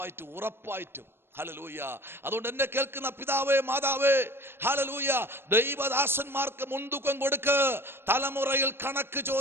ഹല്ലേലൂയ. അതുകൊണ്ട് എന്നെ കേൾക്കുന്ന പിതാവേ, മാതാവേ, ഹല്ലേലൂയ, ദൈവദാസന്മാർക്ക് മുൻതൂക്കം കൊടുക്ക്. തലമുറയിൽ കണക്ക്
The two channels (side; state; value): left; late; 0.11 ms